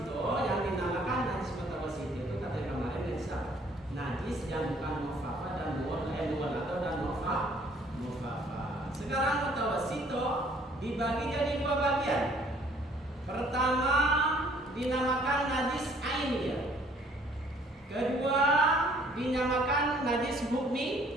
yang dinamakan najis mutawassito itu kata yang kemarin najis apa? Najis yang bukan mufafa dan muwalado dan mufafa. Sekarang mutawassito dibagi jadi dua bagian. Pertama dinamakan najis ainiyah. Kedua dinamakan najis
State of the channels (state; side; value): normal; both; correlation 0.59